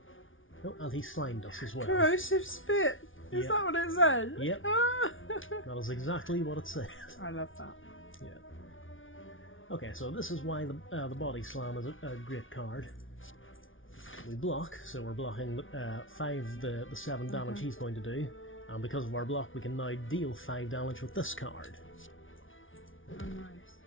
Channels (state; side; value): late; right; 0.57 ms